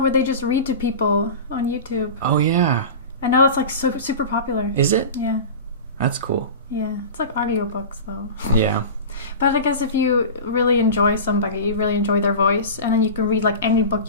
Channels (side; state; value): both; inverted; correlation -0.30